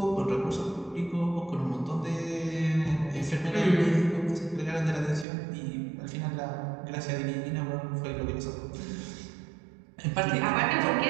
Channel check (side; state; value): left; drops out; at 5.2 s